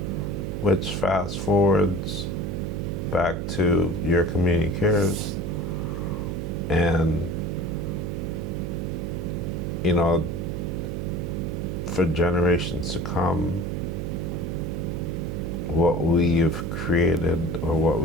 which fast forwards back to your community cares. And you know, for generations to come, what we've created or what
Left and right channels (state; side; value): noise; right; hum, 4 dB below the sound